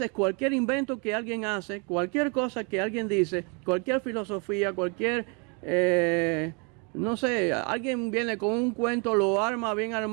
cualquier invento que alguien hace, cualquier cosa que alguien dice, cualquier filosofía, cualquier, no sé, alguien viene con un cuento, lo arma bien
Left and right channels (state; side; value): quieter; left; 34.2 dB